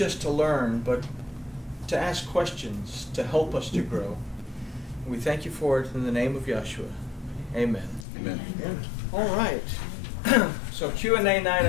to learn, but to ask questions, to help us to grow. We thank you for it in the name of Yeshua. Amen. Amen. All right. So Q&A night,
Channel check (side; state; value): right; drops out; at 8.1 s